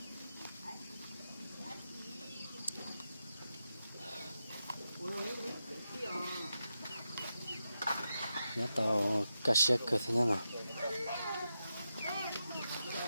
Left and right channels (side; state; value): both; inverted; correlation -0.88